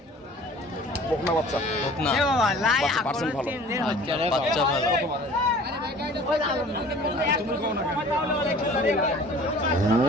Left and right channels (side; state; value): both; normal; correlation 0.47